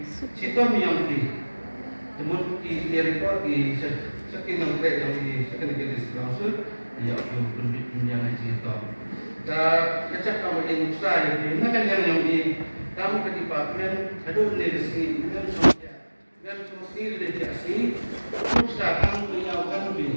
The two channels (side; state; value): both; inverted; correlation -1.00